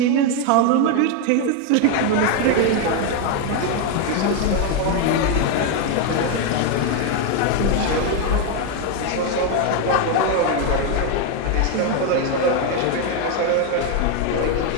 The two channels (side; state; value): both; different; correlation 0.01